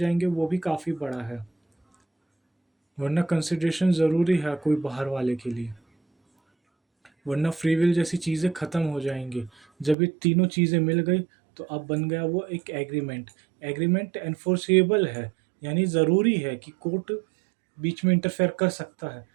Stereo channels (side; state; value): left; drops out; at 10.0 s